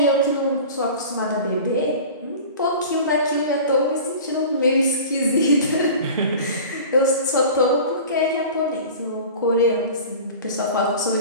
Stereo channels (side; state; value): both; inverted; correlation -0.38